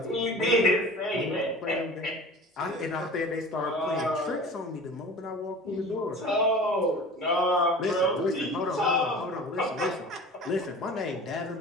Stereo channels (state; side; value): normal; both; correlation 0.40